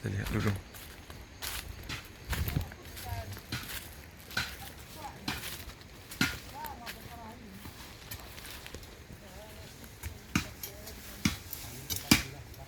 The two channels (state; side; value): identical; both; correlation 1.00